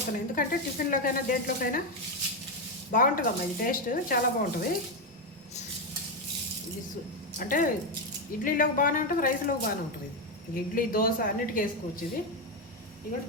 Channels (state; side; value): normal; both; correlation 0.08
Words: ఎందుకంటే టిఫిన్లోకైనా దేంట్లోకైనా బాగుంటుందమ్మా. ఇది టేస్ట్ చాలా బాగుంటుంది. ఇది అంటే ఇడ్లీలోకి బాగానే ఉంటుంది, రైస్లోకి బాగానే ఉంటుంది. ఇది ఇడ్లీ, దోశ అన్నిటికీ వేసుకోవచ్చు. ఇది ఇదిగోటి